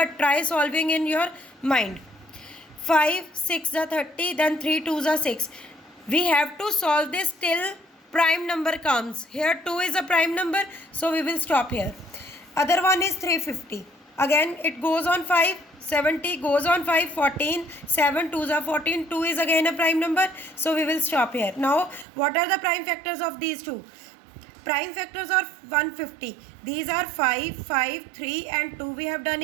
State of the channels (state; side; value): drops out; left; at 22.1 s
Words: try solving in your mind. 5, 6 are 30, then 3 2s are 6. We have to solve this till prime number comes. Here 2 is a prime number, so we will stop here. Other one is 350. Again it goes on 5, 70 goes on 5, 14, 7 2s are 14, 2 is again a prime number, so we will stop here. Now what are the prime factors of these two? Prime factors are 150. These are 5, 5, 3 and 2. We have done